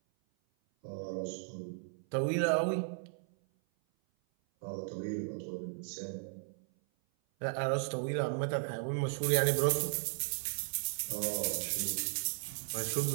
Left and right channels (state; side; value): silent; left; 54 dB below the other